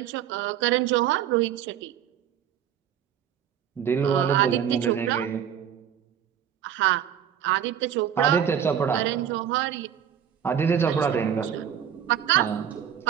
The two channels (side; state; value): left; quieter; 9.3 dB